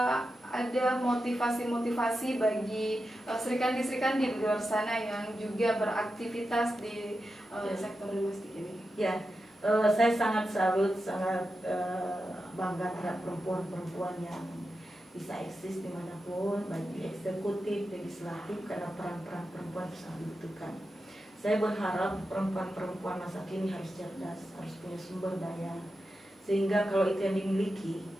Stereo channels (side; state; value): both; normal; correlation 0.90